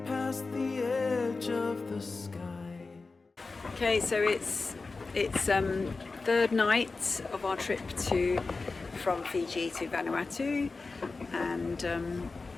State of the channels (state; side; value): quieter; right; 3.9 dB